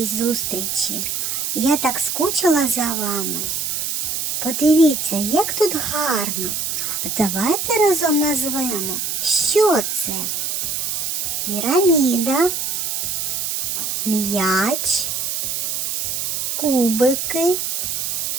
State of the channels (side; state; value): right; noise; hiss, 1 dB below the sound